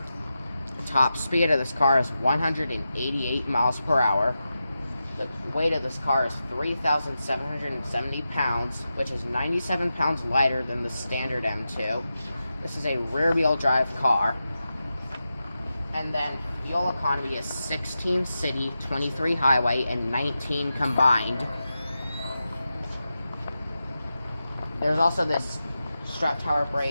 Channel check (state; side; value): inverted; both; correlation -0.91